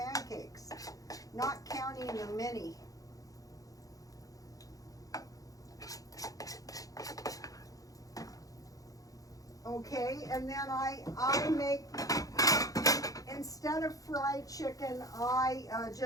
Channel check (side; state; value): right; late; 0.17 ms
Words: not counting the mini. Okay, and then I make, instead of fried chicken, I